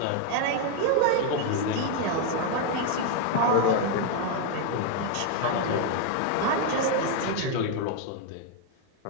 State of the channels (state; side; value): different; both; correlation 0.00